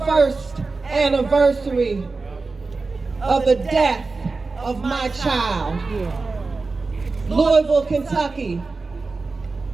anniversary of the death of my child. Louisville, Kentucky.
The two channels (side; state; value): left; quieter; 3.9 dB